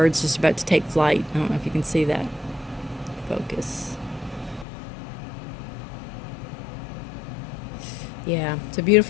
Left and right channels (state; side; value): drops out; right; at 4.7 s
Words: just about to take flight. I don't know if you can see that. Focus. Yeah, it's a